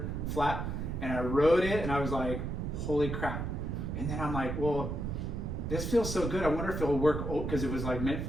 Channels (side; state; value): right; noise; rumble, 3 dB below the sound